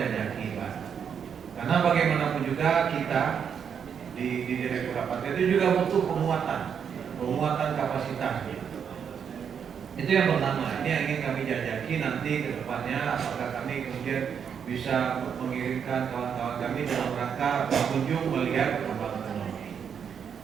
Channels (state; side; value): quieter; left; 7.5 dB